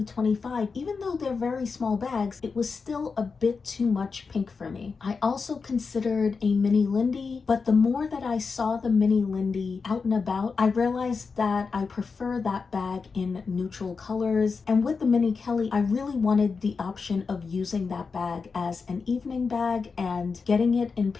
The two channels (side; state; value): right; quieter; 4.9 dB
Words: 25, even though they're very small bags, it was still a bit too much pink for me. I also considered a mini Lindy, but the more that I saw the mini Lindy out and about, I realized that I prefer that bag in neutral colors. And with the mini Kelly, I really wanted the option of using that bag as an evening bag, and getting it in